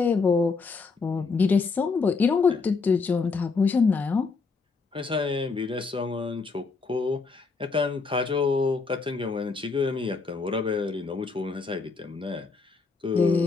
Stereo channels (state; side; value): quieter; right; 4.5 dB